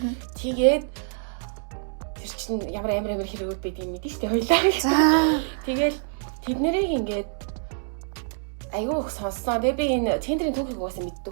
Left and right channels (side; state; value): left; silent; 61 dB below the other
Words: Тэгээд тэр чинь ямар хэрэгүүд байдгийг мэдэн штэ хоёлаа. Тэгэл тэднэрийг ингээд аягүй их сонссон. Тэгээ би энэ Tinder-ийн түүхийг угаасаа мэддэг